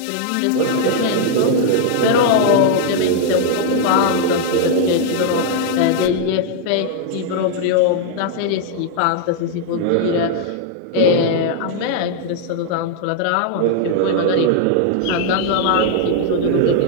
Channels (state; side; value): different; both; correlation 0.00